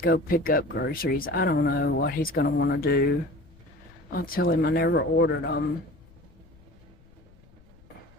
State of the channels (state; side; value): noise; left; rumble, 26 dB below the sound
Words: go pick up groceries. I don't know what he's going to want to do. I'll tell him I never ordered them.